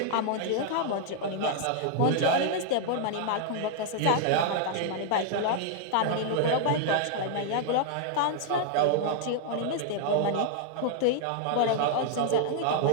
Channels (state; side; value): different; both; correlation -0.01